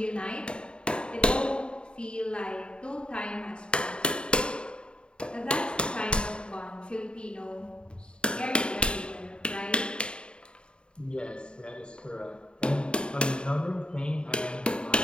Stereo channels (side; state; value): right; late; 0.052 ms